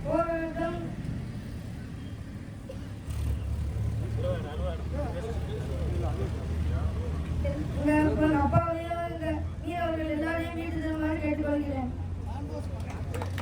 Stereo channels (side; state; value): both; identical; correlation 1.00